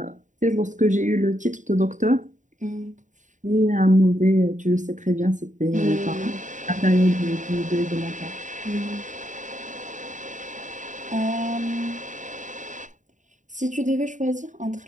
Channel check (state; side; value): late; left; 0.36 ms